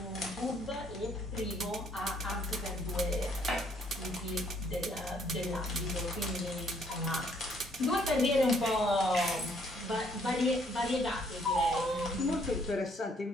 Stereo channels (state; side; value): normal; both; correlation 0.66